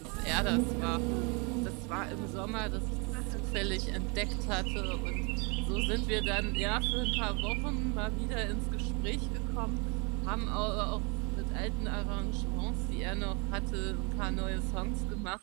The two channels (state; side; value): quieter; left; 31.2 dB